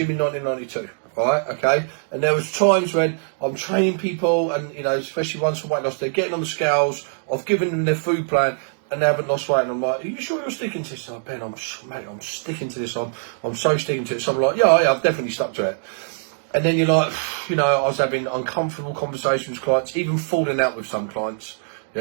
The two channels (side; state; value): left; silent; digital silence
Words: in 1992. Right? Okay. And there was times when I'm training people, and especially ones for weight loss, they're getting on the scales. I've given them their food plan, and they haven't lost weight, and I'm like, "Are you sure you're sticking to this?" Ben, I'm sticking to this. I'm so sticking to it. So I'm like, yeah, I've definitely stuck to it. And then you're like, I was having uncomfortable conversations with clients, even falling out with some clients,